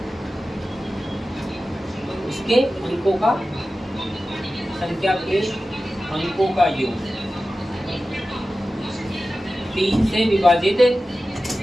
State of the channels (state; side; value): normal; both; correlation 0.94